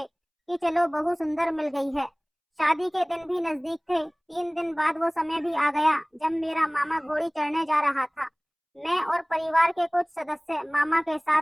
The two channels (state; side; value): identical; both; correlation 1.00